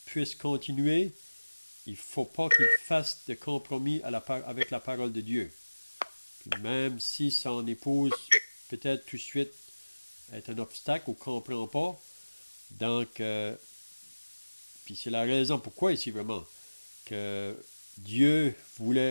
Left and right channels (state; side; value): inverted; both; correlation -1.00